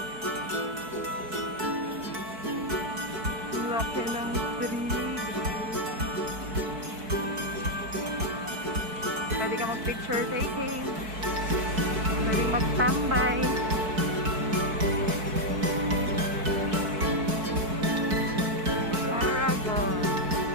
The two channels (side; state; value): left; late; 4.6 ms